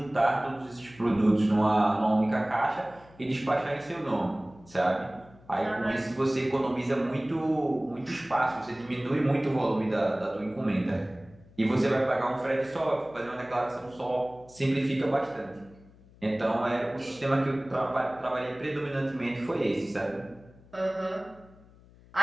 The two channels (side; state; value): left; noise; hum, 25 dB below the sound